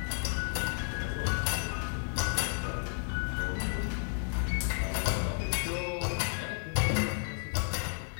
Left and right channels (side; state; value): right; silent; digital silence